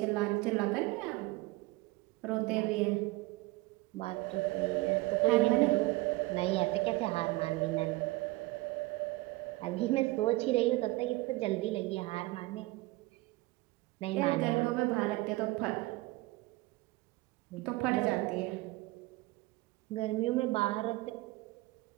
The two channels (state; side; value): quieter; left; 21.1 dB